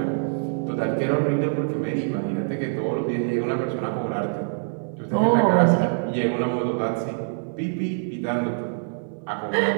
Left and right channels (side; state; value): left; silent; 62 dB below the other